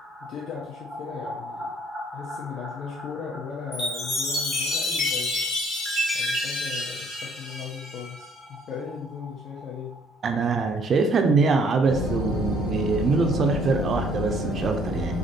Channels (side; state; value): both; normal; correlation 0.62